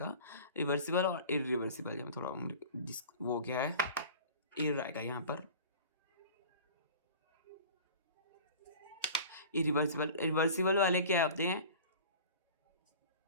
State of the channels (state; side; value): inverted; both; correlation -0.41